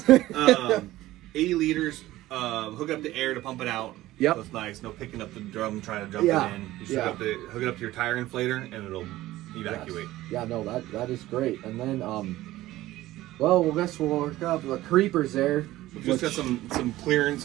80 liters. Hook up the air to pump it out. Yep. That's nice. No picking up the drum, trying to jump it in. You just hook it up to your tire inflator and it'll evacuate. Yes. Yeah, no, that is great. And then, well, I guess we'll work up the creepers there. We've just got some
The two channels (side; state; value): left; quieter; 16.2 dB